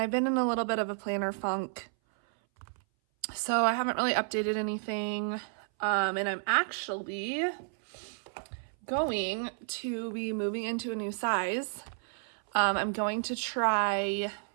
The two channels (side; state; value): left; silent; 57 dB below the other